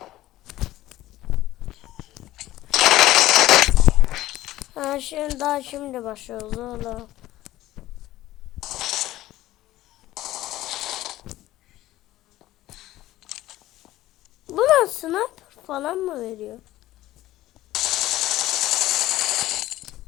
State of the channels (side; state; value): right; quieter; 15.5 dB